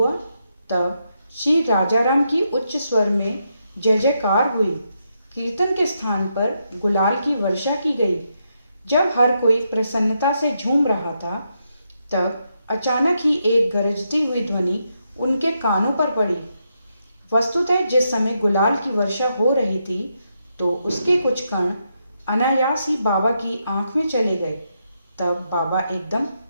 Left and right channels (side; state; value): both; inverted; correlation -0.81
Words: तब श्री राजाराम की उच्च स्वर में जय जयकार हुई। कीर्तन के स्थान पर गुलाल की वर्षा की गई। जब हर कोई प्रसन्नता से झूम रहा था तब अचानक ही एक गरजती हुई ध्वनि उनके कानों पर पड़ी। वस्तुतः जिस समय गुलाल की वर्षा हो रही थी तो उसके कुछ कण अनायास ही बाबा की आंख में चले गए। तब बाबा एकदम